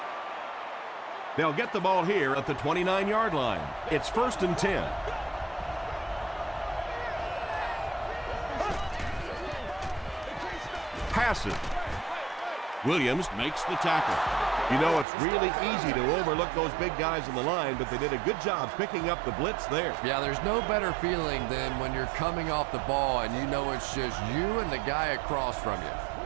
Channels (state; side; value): drops out; left; at 15.1 s